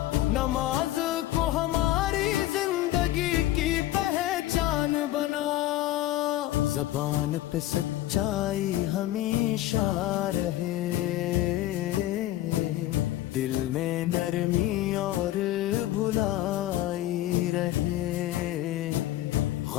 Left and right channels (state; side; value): quieter; right; 14.9 dB